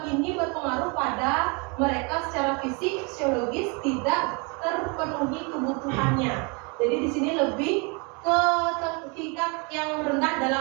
ini berpengaruh pada mereka secara fisik, psikologis tidak terpenuhi kebutuhannya. Jadi di sini lebih ke tingkat yang rendah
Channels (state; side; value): quieter; left; 32.0 dB